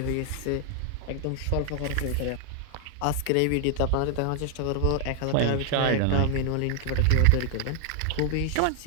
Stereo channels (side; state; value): both; different; correlation 0.00